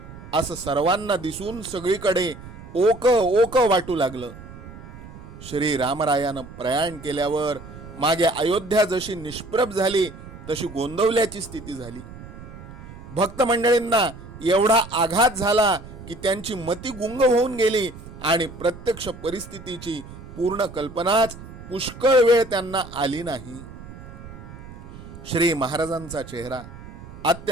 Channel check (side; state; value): right; noise; rumble, 15 dB below the sound